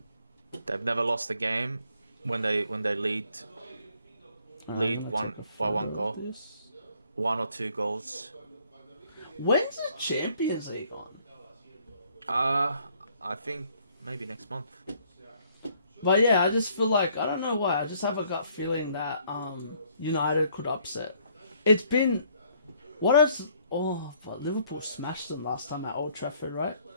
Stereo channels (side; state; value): both; inverted; correlation -0.64